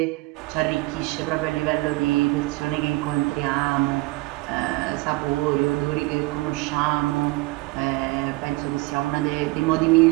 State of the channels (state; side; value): quieter; left; 22.4 dB